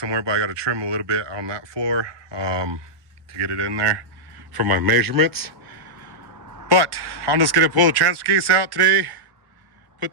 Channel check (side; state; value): left; late; 1.1 ms